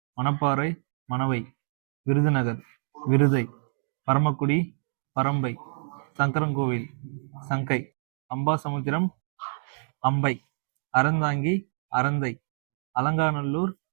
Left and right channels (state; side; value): silent; left; digital silence